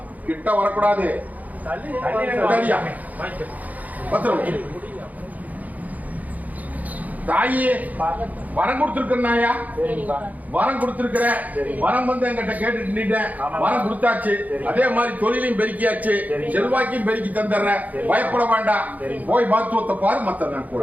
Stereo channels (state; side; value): late; left; 0.078 ms